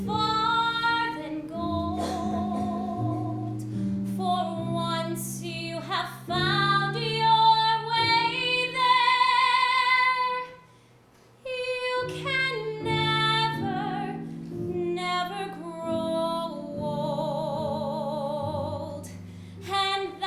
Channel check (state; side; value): identical; both; correlation 1.00